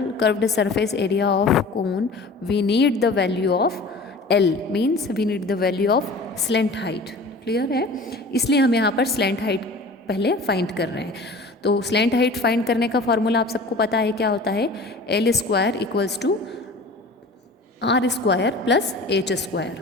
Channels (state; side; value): quieter; right; 3.0 dB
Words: curved surface area of cone, we need the value of L, means we need the value of slant height। Clear है? इसलिए हम यहाँ पर slant height पहले find कर रहे हैं। तो slant height फाइंड करने का फॉर्मूला आप सबको पता है, क्या होता है, L square equals to R square plus H